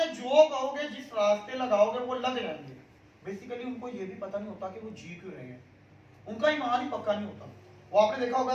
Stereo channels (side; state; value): both; identical; correlation 1.00